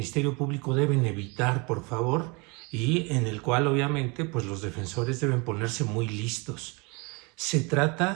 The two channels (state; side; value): quieter; left; 29.0 dB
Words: Público deben evitar, por favor, y en el cual obviamente pues los defensores deben ponerse muy listos. Se